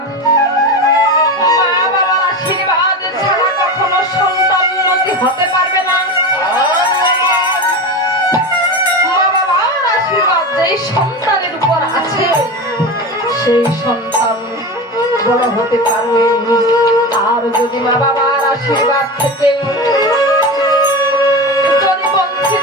মা বাবার আশীর্বাদ ছাড়া কখনো সন্তান উন্নতি হতে পারবে না। যেই সন্তানের উপর আছে সেই সন্তান বড় হতে পারবে। আর যদি মা বাবার আশীর্বাদ থেকে যদি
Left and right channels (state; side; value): normal; both; correlation 0.24